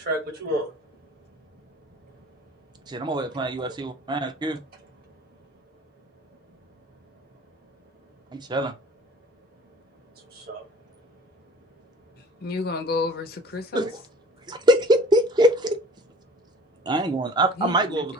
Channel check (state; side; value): normal; both; correlation 0.47